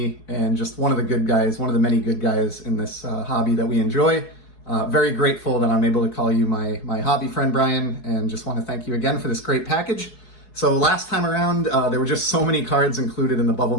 and just one of the good guys, one of the many good guys in this hobby that we enjoy. Very grateful that I'm able to call you my hobby friend, Brian, and just want to thank you again for this great package. So last time around, there were just so many cards included in the bubble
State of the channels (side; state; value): right; late; 4.7 ms